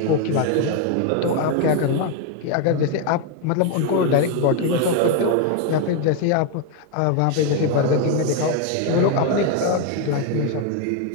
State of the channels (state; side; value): different; both; correlation 0.01